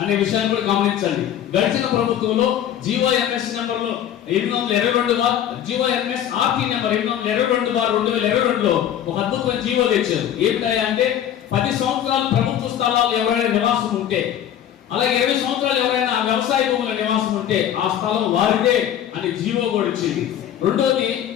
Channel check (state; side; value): quieter; right; 10.4 dB